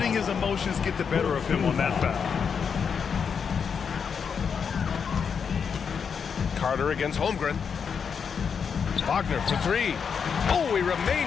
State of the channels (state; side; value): quieter; right; 6.5 dB